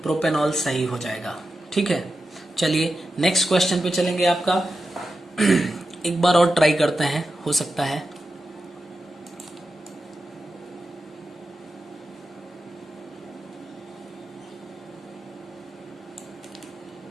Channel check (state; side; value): normal; both; correlation 0.90